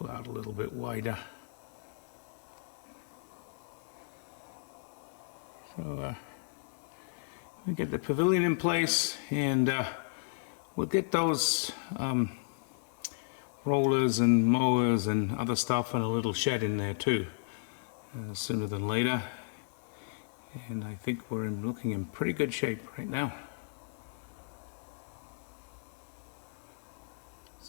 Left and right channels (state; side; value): silent; right; digital silence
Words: out a little bit wider. So we get the pavilion in place, and we'll get those rollers and mowers and other stuff and a little shed in there too, sooner than later. And I think we're looking in pretty good shape right now.